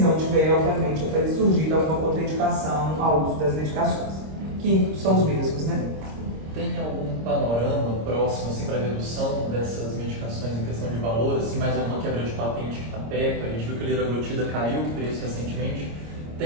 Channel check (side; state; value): left; late; 26 ms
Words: tiver, obviamente, até surgir alguma contraindicação ao uso das medicações, que são os mesmos, né? Tem algum panorama próximo assim, para redução dessas medicações em questão de valor, assim, mais uma quebra de patente que está perto? A gente viu que a liraglutida caiu o preço recentemente.